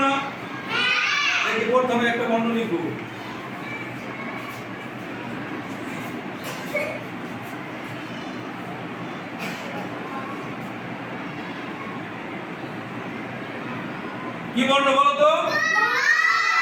না? দেখি প্রথমে একটা বর্ণ লিখবো। কি বর্ণ বলো তো?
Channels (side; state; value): both; identical; correlation 1.00